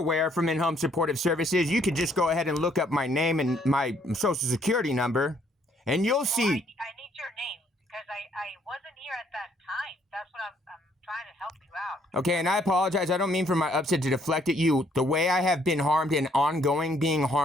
from In-Home Supportive Services, you could just go ahead and look up my name and my social security number, and you'll see. I need your name because I wasn't here at that time. That's what I'm trying to help you out. Okay, and I apologize. I don't mean for my upset to deflect at you. The way I have been harmed and ongoing being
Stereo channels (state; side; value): normal; both; correlation 0.67